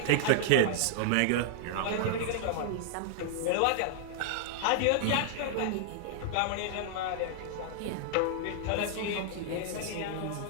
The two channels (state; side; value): different; both; correlation -0.01